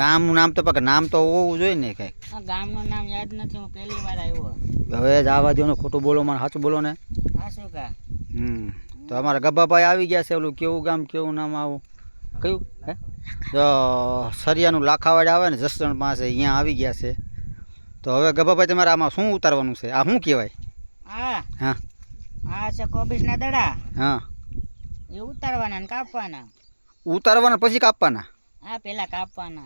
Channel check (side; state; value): both; inverted; correlation -1.00